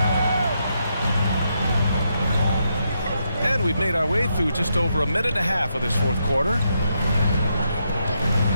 And we've made our way through just over a minute and a half of this fourth quarter.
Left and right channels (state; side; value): inverted; both; correlation -0.80